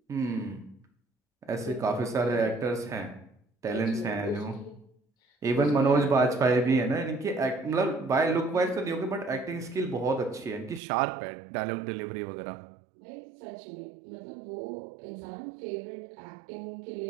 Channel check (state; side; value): drops out; left; at 10.8 s